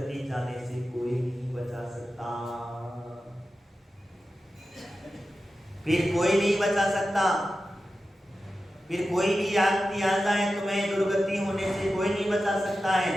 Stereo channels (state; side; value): normal; both; correlation 0.93